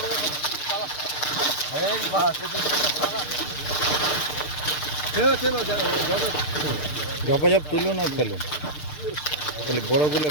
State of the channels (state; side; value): late; right; 6.6 ms